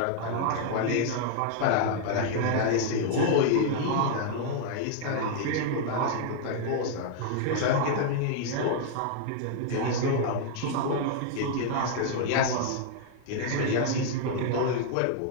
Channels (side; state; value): both; different; correlation 0.00